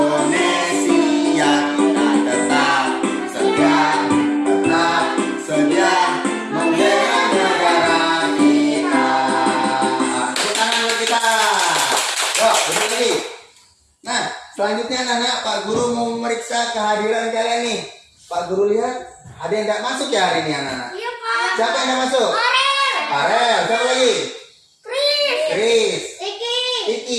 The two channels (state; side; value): identical; both; correlation 1.00